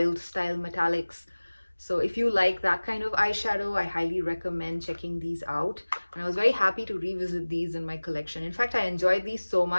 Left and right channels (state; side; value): inverted; both; correlation -1.00